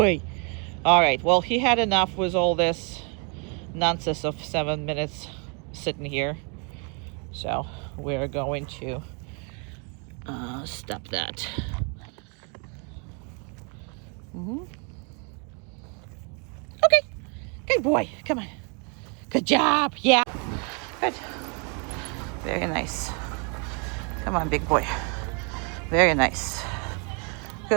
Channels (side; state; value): left; quieter; 36.1 dB